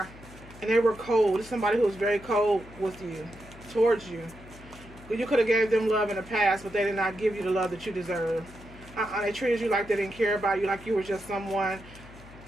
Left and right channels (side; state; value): left; noise; hum, 19 dB below the sound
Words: And they were cold. This is somebody who was very cold with you, towards you. You could have gave them love in the past, but they did not give you the love that you deserve. They treated you like they didn't care about you, like you were just one